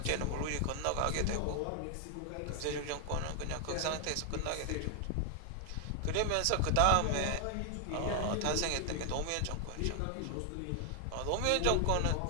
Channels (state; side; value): different; both; correlation 0.00